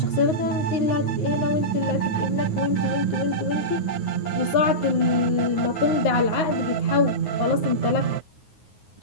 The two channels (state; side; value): late; right; 9.5 ms